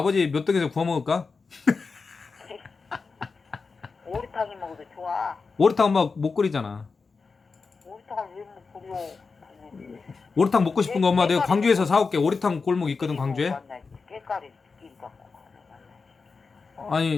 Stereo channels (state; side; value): quieter; right; 4.6 dB